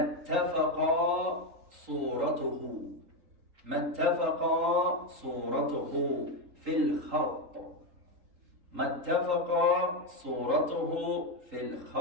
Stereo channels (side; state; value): left; late; 3.8 ms